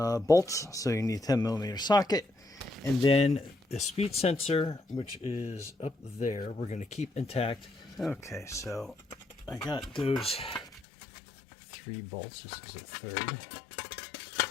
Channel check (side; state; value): right; drops out; at 10.8 s